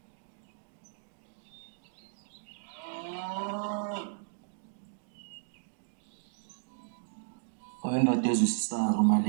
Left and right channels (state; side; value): silent; left; digital silence